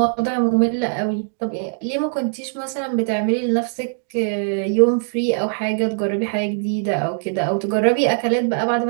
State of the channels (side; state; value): left; silent; digital silence